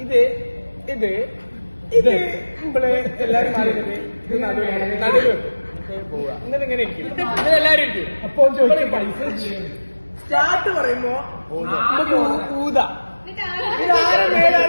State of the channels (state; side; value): inverted; both; correlation -1.00